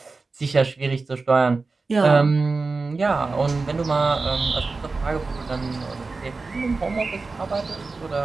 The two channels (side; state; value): left; quieter; 3.9 dB